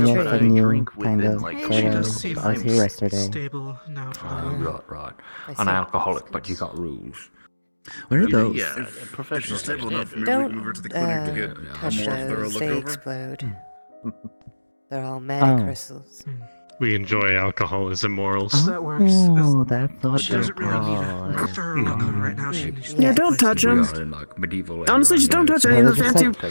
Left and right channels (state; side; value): inverted; both; correlation -1.00